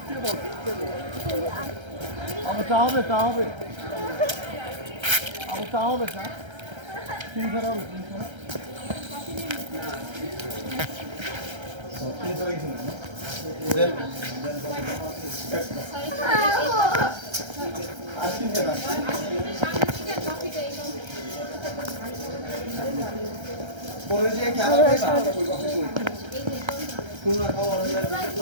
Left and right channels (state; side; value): late; left; 1.3 ms